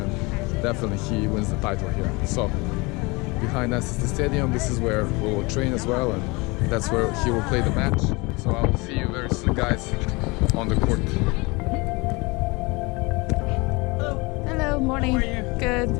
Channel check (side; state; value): right; quieter; 25.8 dB